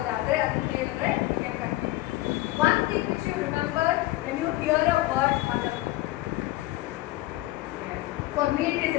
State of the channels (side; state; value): right; quieter; 17.7 dB